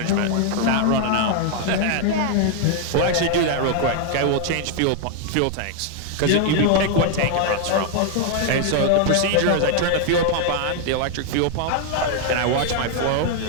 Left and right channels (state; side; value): different; both; correlation 0.00